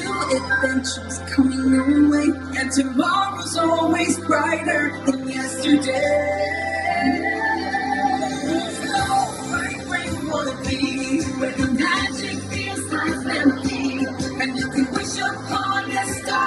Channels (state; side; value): identical; both; correlation 1.00